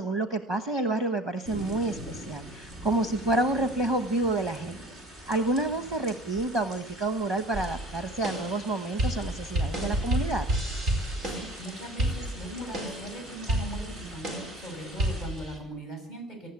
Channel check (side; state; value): both; normal; correlation 0.44